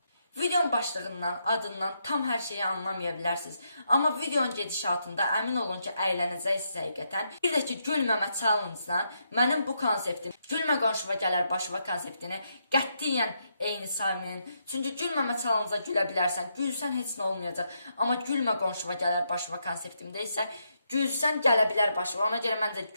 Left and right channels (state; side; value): inverted; both; correlation -0.79